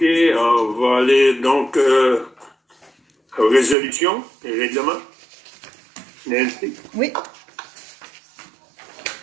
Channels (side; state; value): left; drops out; at 3.8 s